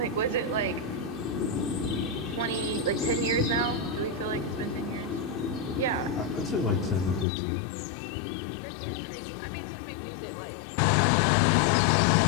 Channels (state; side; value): drops out; right; at 7.2 s